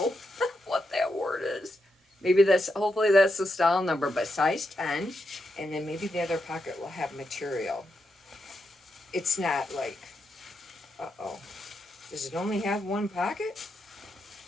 what that word is. Maybe that's, hopefully that's the style number, but size 10. And then maybe the other pocket will have material. It's not like, uh-oh. Does it only have one pocket?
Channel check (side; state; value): both; normal; correlation 0.84